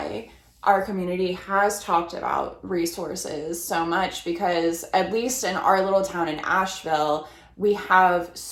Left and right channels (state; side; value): identical; both; correlation 1.00